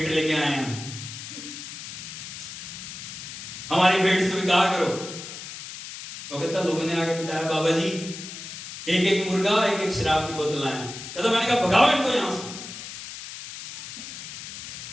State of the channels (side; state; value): left; noise; hiss, 10 dB below the sound